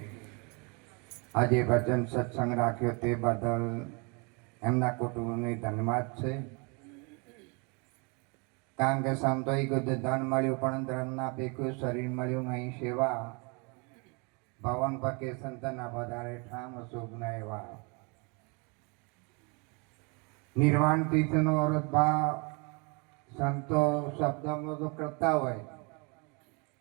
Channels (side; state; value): left; quieter; 32.2 dB